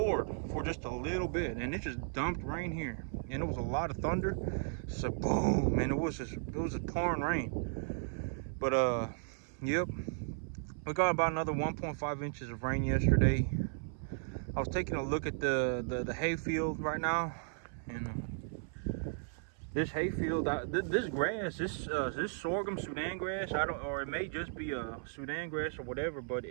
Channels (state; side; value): silent; left; 54 dB below the other